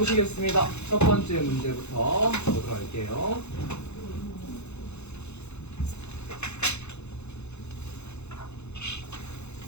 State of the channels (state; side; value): late; right; 0.81 ms